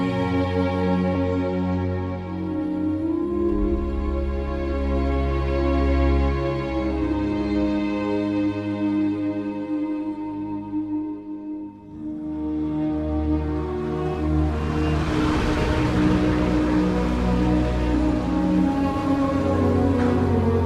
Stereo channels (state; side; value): identical; both; correlation 1.00